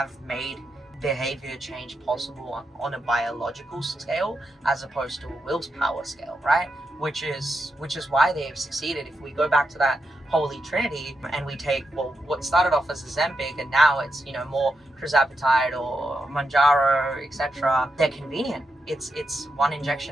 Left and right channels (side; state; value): both; normal; correlation 0.85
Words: made behavior change possible on a biological scale as opposed to a willpower scale, right? Which is why they have succeeded. If we go back to that holy trinity and we take, well, what started off as Ozempic and now it's, more tirzepatide or Mounjaro, etc. They're convenient. It's one